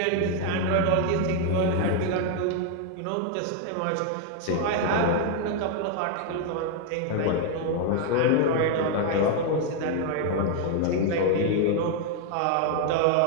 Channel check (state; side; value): different; both; correlation 0.00